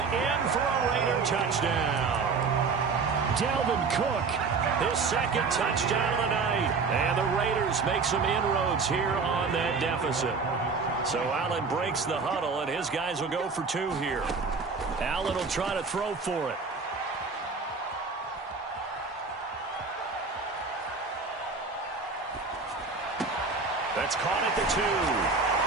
in for a Raider touchdown. Dalvin Cook, his second touchdown of the night. And the Raiders make some inroads here on that deficit. So Allen breaks the huddle, and his guys will go for 2 here. Allen will try to throw for it. That's caught at the 2.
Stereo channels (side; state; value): left; quieter; 4.6 dB